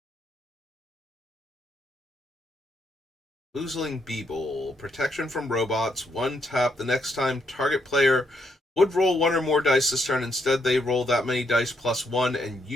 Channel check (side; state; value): both; normal; correlation 0.76